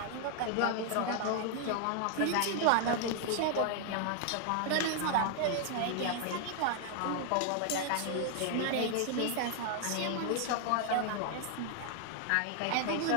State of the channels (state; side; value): different; both; correlation 0.00